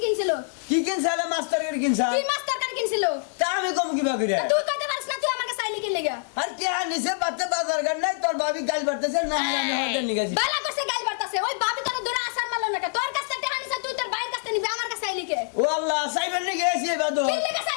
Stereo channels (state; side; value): silent; right; digital silence